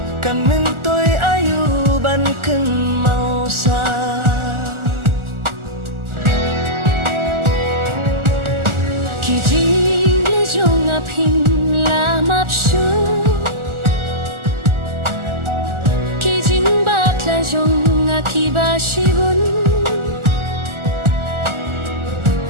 kan min toy ayu ban ken mau sa ki jing le jonga pin la map shu ki jing bak la jonga ki ba shibun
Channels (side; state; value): left; late; 1.4 ms